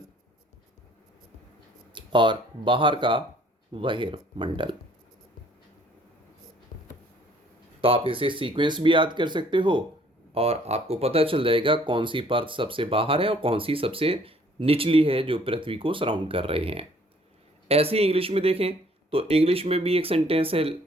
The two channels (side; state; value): both; normal; correlation 0.59